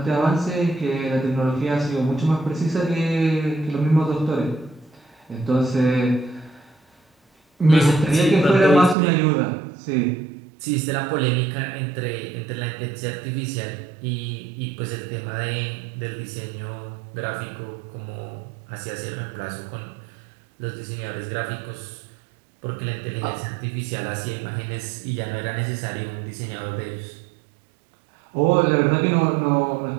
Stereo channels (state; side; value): drops out; left; at 9.0 s